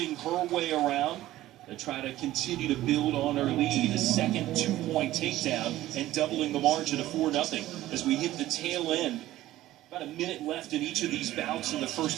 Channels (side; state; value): left; quieter; 15.1 dB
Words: her way around to try to continue to build on her lead. A second 2-point takedown and doubling the margin to 4-0 as we hit the tail end. About a minute left in each of these bouts in the